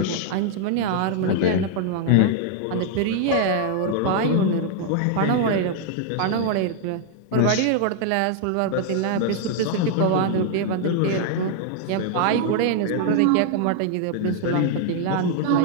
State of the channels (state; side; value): different; both; correlation 0.00